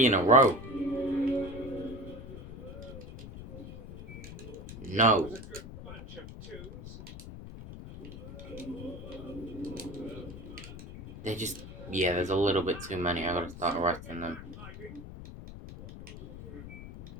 in a row. No. Was a good bunch of twos. They just... Yeah, there's a little bit too many. I gotta start arresting them. Hiding.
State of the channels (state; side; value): noise; left; rumble, 12 dB below the sound